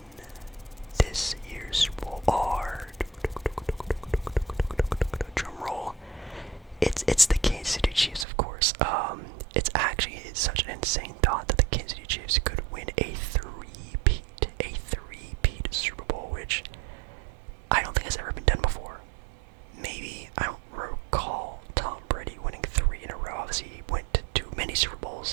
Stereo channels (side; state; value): left; drops out; at 8.2 s